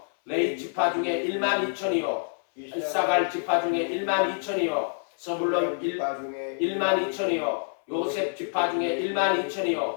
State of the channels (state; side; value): silent; right; 60 dB below the other